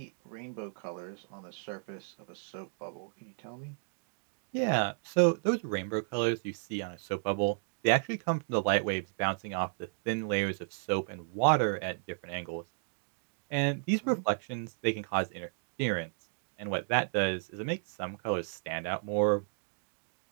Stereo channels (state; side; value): silent; left; digital silence